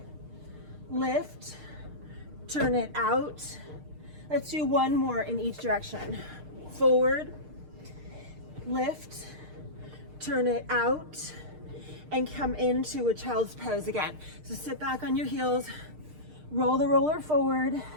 lift, turn it out. Let's do 1 more in each direction. Forward, lift, turn it out, and come into a child's pose again. So sit back on your heels, roll the roller forward,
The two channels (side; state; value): left; late; 6.6 ms